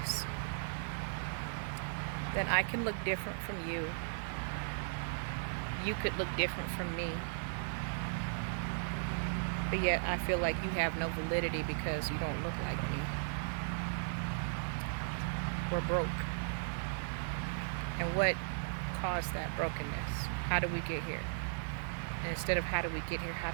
that I can look different from you? You could look different from me. But yet I feel like you have no validity because you don't look like me. We're broke. And what caused that brokenness? How do we get here? And instead of how do we get here, how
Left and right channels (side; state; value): left; silent; digital silence